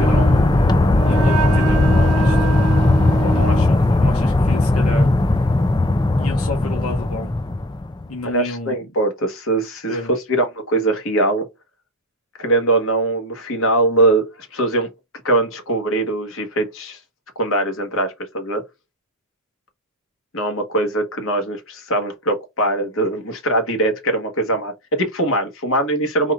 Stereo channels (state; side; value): normal; both; correlation 0.44